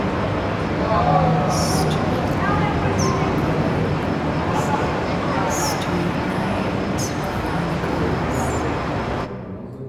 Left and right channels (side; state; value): both; identical; correlation 1.00